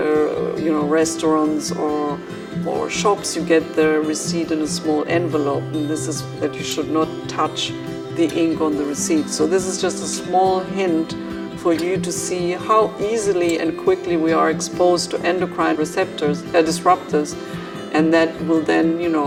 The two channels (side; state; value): both; identical; correlation 1.00